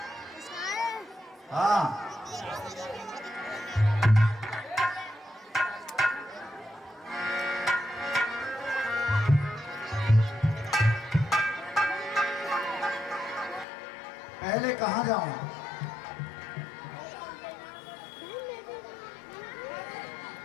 हाँ पहले कहाँ जाऊं?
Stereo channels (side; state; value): right; drops out; at 13.7 s